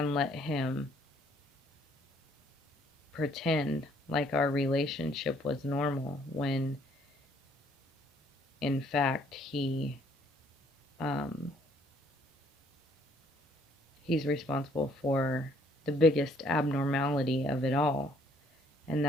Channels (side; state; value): both; normal; correlation 0.64